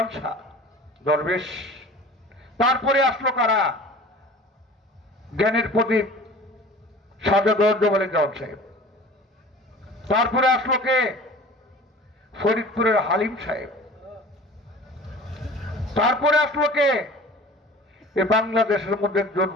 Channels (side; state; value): both; normal; correlation 0.42